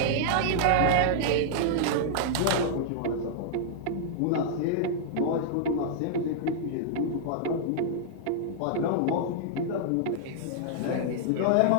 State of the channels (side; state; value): both; different; correlation -0.01